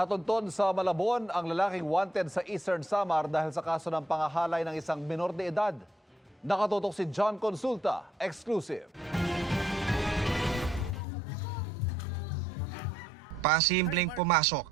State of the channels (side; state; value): both; normal; correlation 0.75